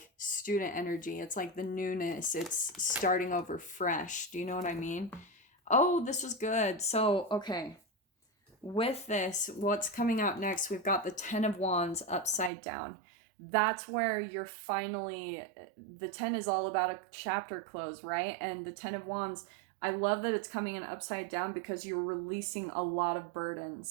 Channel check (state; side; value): drops out; left; at 12.5 s